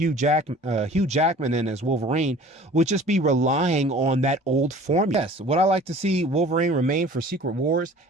Jackman in as Wolverine would just be relying on that old formula. Yes, would I like to see Wolverine remain for Secret Wars?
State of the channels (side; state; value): both; normal; correlation 0.46